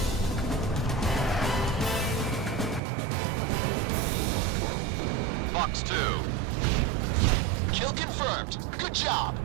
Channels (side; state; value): left; drops out; at 2.8 s